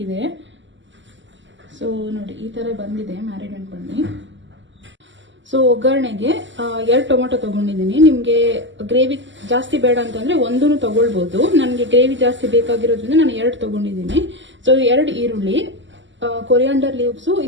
ಸೊ ನೋಡಿ, ಈ ತರ ಬಂದಿದೆ ಮ್ಯಾರಿನೇಟ್ பண்ணி. ಸೊ ಒಗ್ಗರಣೆಗೆ 2 ಟೊಮೆಟೊ ತಗೊಂಡಿದ್ದೀನಿ. ನಿಮಗೆ ಗ್ರೇವಿ ಜಾಸ್ತಿ ಬೇಡ ಅಂತಂದ್ರೆ 1 ತಗೊಳ್ಬಹುದು. ನನಗೆ ಗ್ರೇವಿ ಜಾಸ್ತಿ ಬೇಕಾಗಿರೋದ್ರಿಂದ ನಾನು 2 ತಗೊಂಡಿದ್ದೀನಿ. ಸೊ 2 ಈರುಳ್ಳಿ, ಕೊರಿಯಾಂಡರ್ ಲೀವ್ಸು,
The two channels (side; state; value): left; late; 0.54 ms